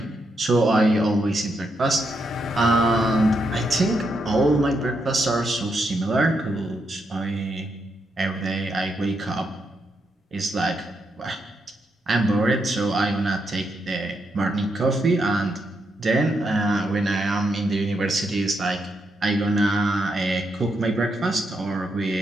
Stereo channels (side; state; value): both; normal; correlation 0.81